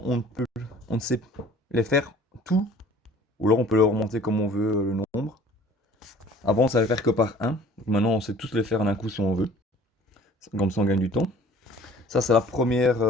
on ne sait les faire tout, ou alors on peut les remonter comme on veut le nombre. Avant on savait faire que par un, donc maintenant on sait tous les faire en un coup si on veut, comme ça on gagne du temps. Ça c'est la première,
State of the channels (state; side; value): normal; both; correlation 0.51